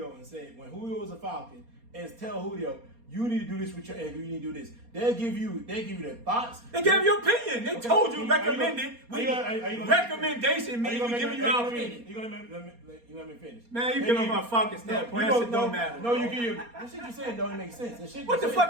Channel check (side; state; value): left; late; 4.2 ms